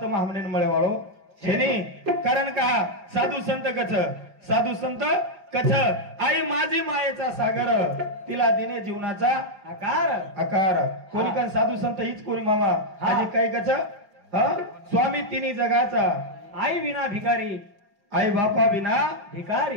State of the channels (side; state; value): left; late; 5.0 ms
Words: तम हमने मळे वाळो छेनी कारण का साधू संत कछ साधू संत कछ आई माझी मायेचा सागर तिला दिने जीवनाचा आकार आकार कोणी पण साधू संत हीच कोणी मामा आजी काय कछ स्वामी तिन्ही जगाचा आई विना भिकारी आई बापा बिना